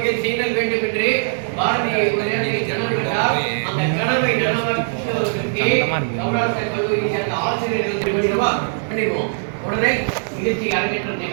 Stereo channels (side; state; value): left; silent; 55 dB below the other